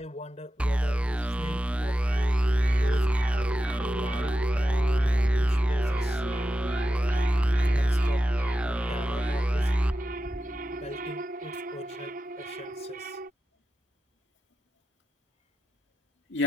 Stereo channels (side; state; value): both; normal; correlation 0.92